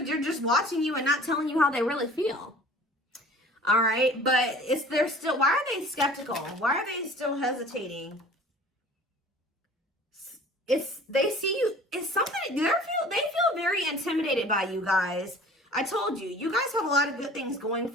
they're just watching you and not telling you how they really feel. All right, but they're still, why are they skeptical? Why are they still hesitating? They see you, it's something, they feel very intimidated by you guys. I told you, you guys have a lot of good things going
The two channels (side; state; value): both; normal; correlation 0.46